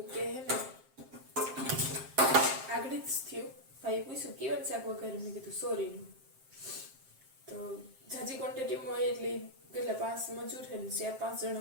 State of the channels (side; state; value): left; late; 7.6 ms